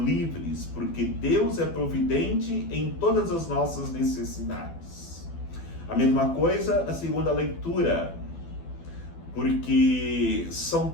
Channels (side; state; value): right; late; 12 ms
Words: livres, porque Deus é providente em todas as nossas necessidades. A mesma coisa na segunda leitura, porque São